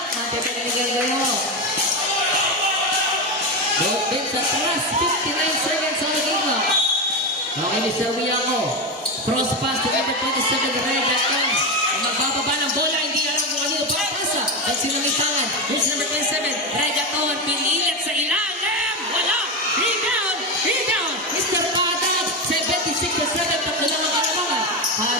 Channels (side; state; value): both; normal; correlation 0.15